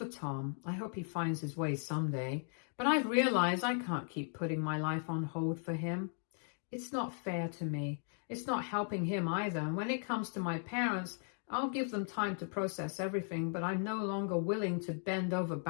Tom, I hope he finds his way someday, but I've realized I can't keep putting my life on hold for him. It's not fair to me. It's not helping him either. And when it comes to my parents, I'll give them time to process everything, but I'm no longer willing to bend over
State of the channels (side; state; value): right; silent; 53 dB below the other